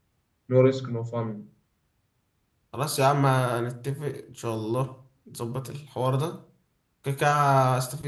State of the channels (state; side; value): identical; both; correlation 1.00